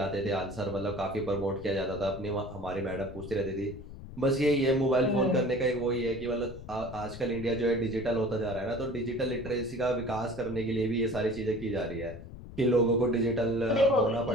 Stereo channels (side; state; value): left; noise; rumble, 14 dB below the sound